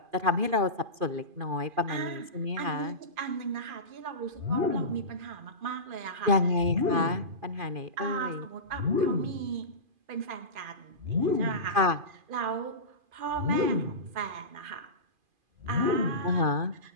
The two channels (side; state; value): left; late; 2.5 ms